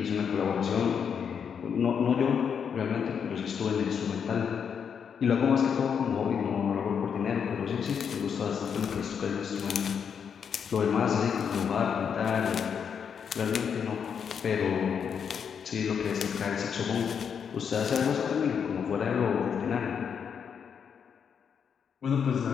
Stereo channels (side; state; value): right; quieter; 7.2 dB